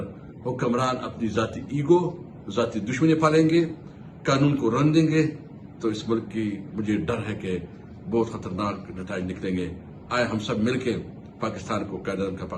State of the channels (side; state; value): both; identical; correlation 1.00